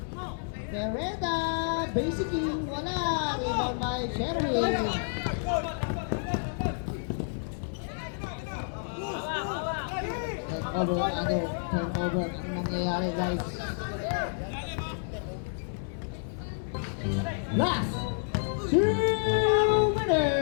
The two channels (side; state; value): right; silent; 58 dB below the other